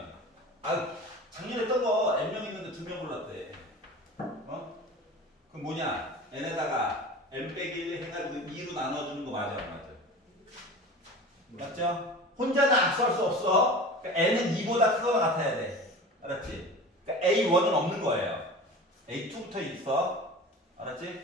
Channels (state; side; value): normal; both; correlation 0.36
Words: 작년에 했던 거 n명 있는데 2명 골랐대. 그럼 뭐냐? n에다가 n 빼기 1 해가지고 2로 나눠주는 거 맞아 안 맞아? 맞죠? 혼자는 악수할 수 없어. 그러니까 n은 2보다 크거나 같아야 돼. 알았지? 그러니까 A1은 없는 거예요. A2부터 있어.